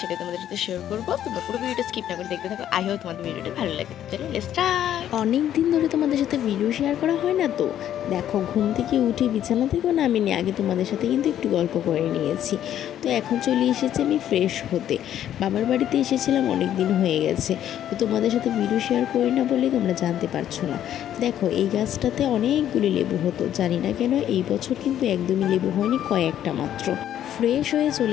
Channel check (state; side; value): quieter; right; 11.0 dB